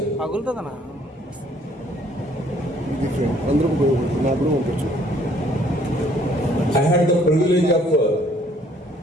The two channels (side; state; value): both; normal; correlation 0.62